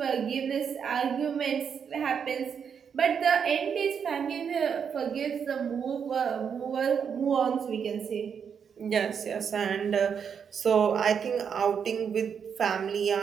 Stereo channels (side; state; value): left; quieter; 7.1 dB